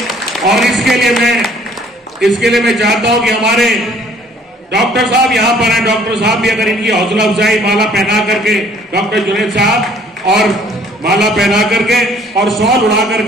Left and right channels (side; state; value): both; normal; correlation 0.57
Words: और इसके लिए मैं चाहता हूं कि हमारे डॉक्टर साहब यहाँ पर हैं, डॉक्टर साहब भी अगर इनकी हौसला अफजाई माला पहना करके, डॉक्टर जुनैद साहब और माला पहना करके और शॉल उड़ा